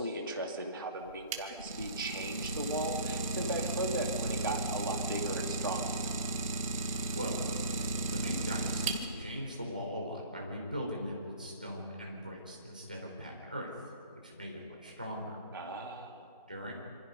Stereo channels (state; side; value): inverted; both; correlation -0.45